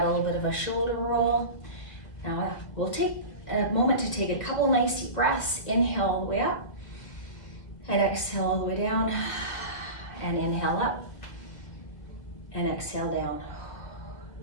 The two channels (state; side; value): late; right; 1.7 ms